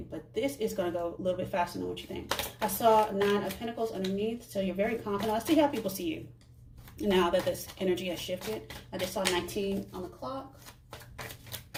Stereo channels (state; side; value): identical; both; correlation 1.00